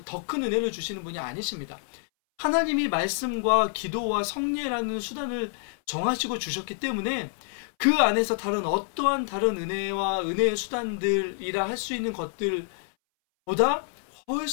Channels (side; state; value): right; silent; 59 dB below the other